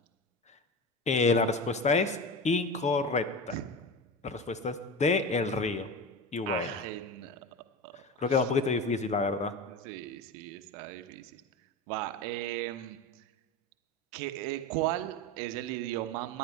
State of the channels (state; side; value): normal; both; correlation 0.26